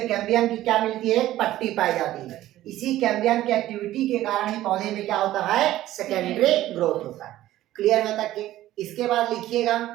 कैम्बियम की क्या मिलती है, पट्टी पाई जाती है। इसी कैम्बियम की एक्टिविटी के कारण ही पौधे में क्या होता है, सेकेंडरी ग्रोथ होता है। क्लियर है तक के? इसके बाद लिखिएगा,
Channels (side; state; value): left; quieter; 14.5 dB